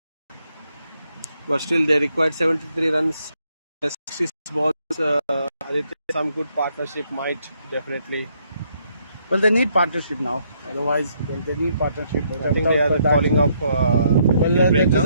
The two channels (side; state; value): both; inverted; correlation -0.72